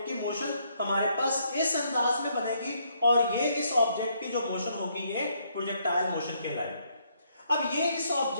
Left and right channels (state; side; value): inverted; both; correlation -0.71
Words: की मोशन हमारे पास इस अंदाज में बनेगी और ये इस ऑब्जेक्ट की जो मोशन होगी ये प्रोजेक्टाइल मोशन कहलाएगी। अब ये इस